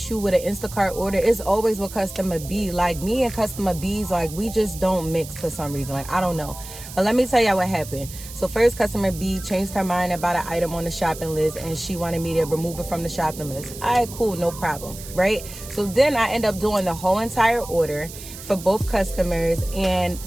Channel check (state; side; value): noise; right; hiss, 14 dB below the sound